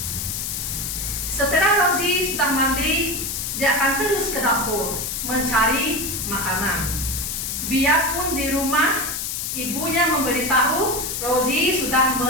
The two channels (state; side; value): noise; left; hiss, 3 dB below the sound